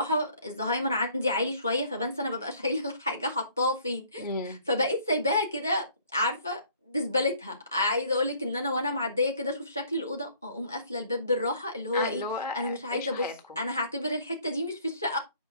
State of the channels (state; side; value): inverted; both; correlation -0.59